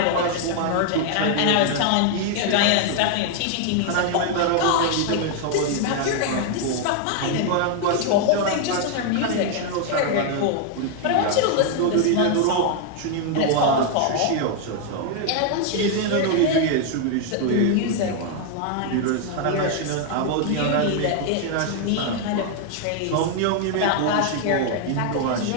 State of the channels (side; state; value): both; different; correlation 0.00